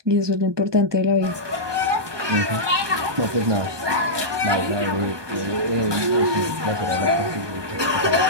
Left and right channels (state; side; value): late; left; 1.2 ms